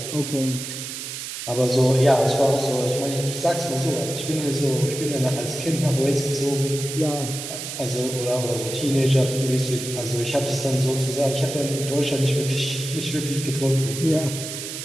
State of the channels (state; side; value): noise; right; hiss, 7 dB below the sound